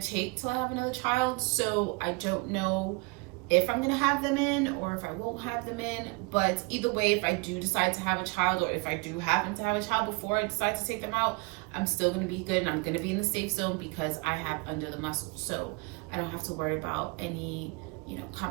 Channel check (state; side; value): quieter; left; 28.7 dB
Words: take till I have another child, so I don't know if I'm going to have them in or if I won't have them in. But either way, if I do decide to have a child, or if I do happen to have a child before I decide to take them out, I'm still going to be good, and I'm going to be in the safe zone because I have under the muscle. So I don't have to worry about any, you know,